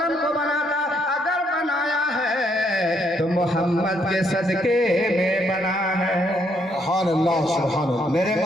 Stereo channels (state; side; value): normal; both; correlation 0.72